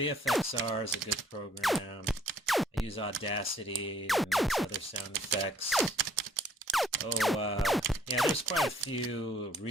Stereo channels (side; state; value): both; normal; correlation 0.62